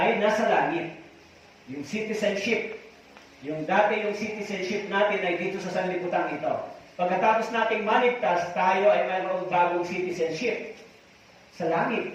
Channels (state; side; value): identical; both; correlation 1.00